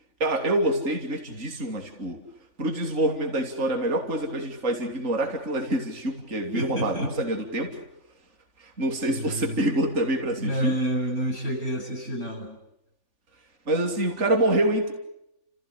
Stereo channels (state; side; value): late; left; 3.5 ms